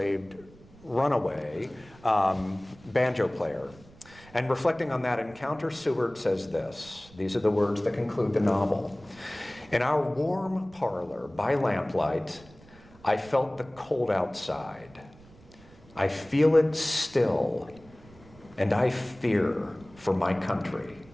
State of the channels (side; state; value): right; noise; rumble, 24 dB below the sound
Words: runaway banjo player. And reflecting on that encounter, Seward says this. These are the words that conclude the novel. In our warm parlor by lamplight, I felt the cold outside. I feel it still, and I fear for my country.